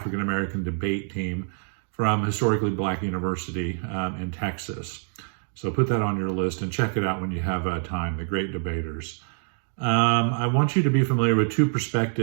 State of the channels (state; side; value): silent; left; 61 dB below the other